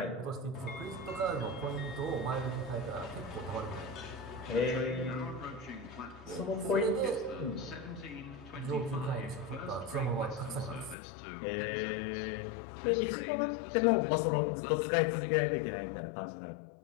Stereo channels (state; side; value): drops out; right; at 11.0 s